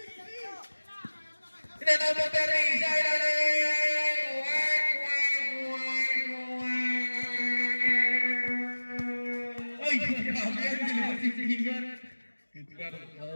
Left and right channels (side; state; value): both; inverted; correlation -1.00